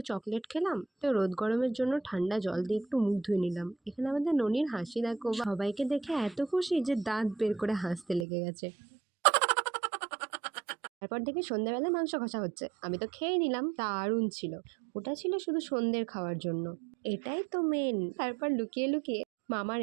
চকলেট খেলাম, তো রোদ গরমের জন্য ঠান্ডা জল দিয়ে একটু মুখ ধুয়ে নিলাম। এখানে আমাদের ননির হাসি দেখো, সবাইকে দেখে এত খুশি যে দাঁত বের করে হাসতে লেগে গেছে। তারপর দেখি সন্ধ্যাবেলায় মাংস কষা হচ্ছে। আমি তো খেয়ে নিলাম, দারুণ ছিল। ওটা ছিল শুধু সন্ধ্যের খাওয়ার জন্য, এটাই তো মেন। তারপর লুকিয়ে লুকিয়ে মামার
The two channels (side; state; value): left; drops out; at 8.2 s